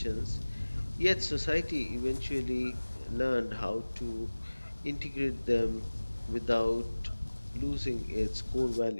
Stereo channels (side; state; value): both; inverted; correlation -1.00